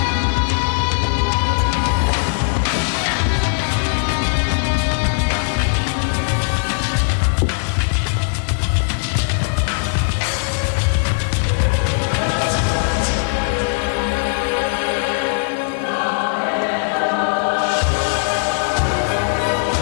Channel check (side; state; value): right; silent; 67 dB below the other